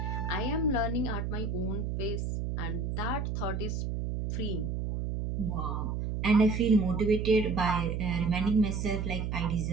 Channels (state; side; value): noise; right; hum, 2 dB below the sound